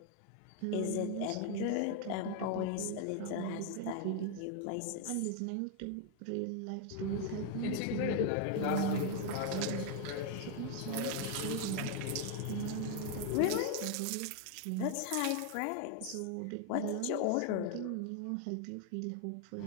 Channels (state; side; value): different; both; correlation 0.00